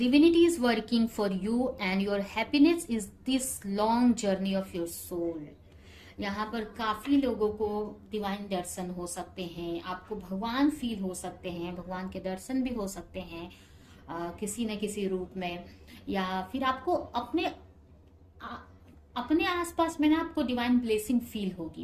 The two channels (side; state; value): both; identical; correlation 1.00